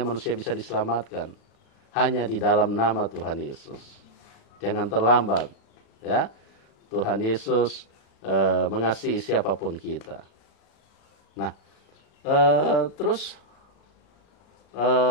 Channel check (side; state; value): right; late; 36 ms